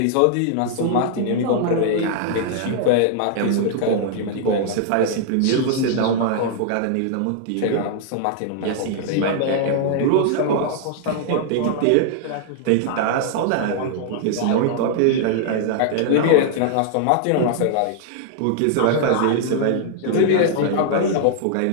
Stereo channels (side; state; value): both; different; correlation -0.01